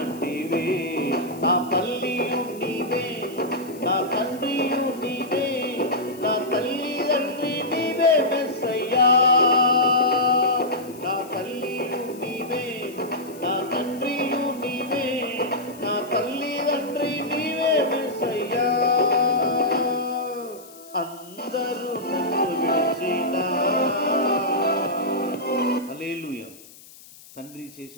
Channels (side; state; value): left; noise; hiss, 21 dB below the sound